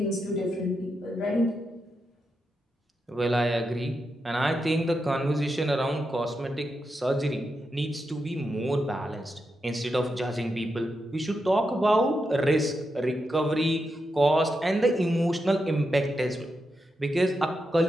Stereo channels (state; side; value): normal; both; correlation 0.86